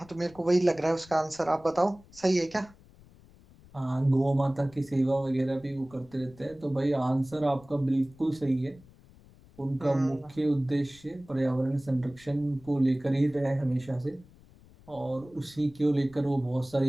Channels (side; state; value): left; noise; rumble, 24 dB below the sound